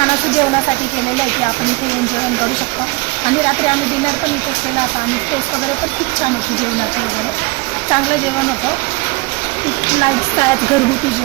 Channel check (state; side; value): quieter; left; 25.7 dB